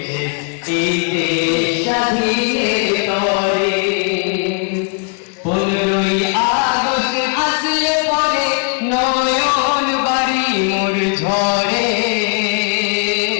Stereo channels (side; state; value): right; quieter; 39.3 dB